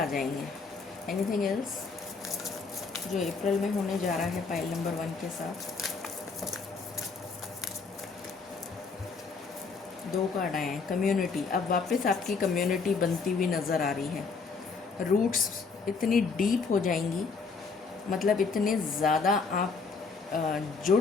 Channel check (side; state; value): right; quieter; 4.7 dB